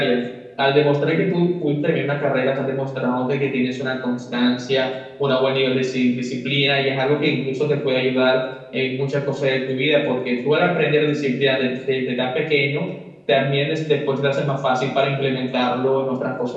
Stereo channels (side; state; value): both; identical; correlation 1.00